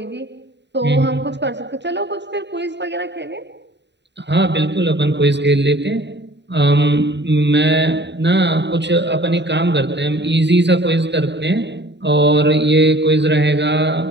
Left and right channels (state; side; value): late; left; 0.51 ms